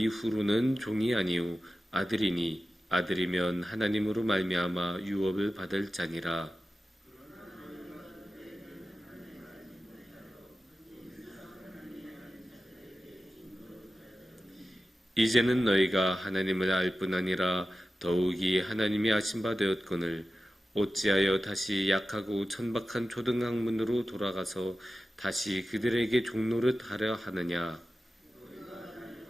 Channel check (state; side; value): normal; both; correlation 0.93